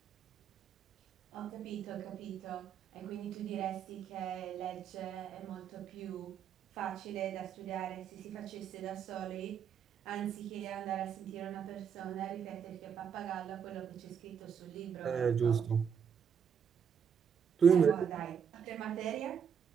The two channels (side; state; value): left; quieter; 7.4 dB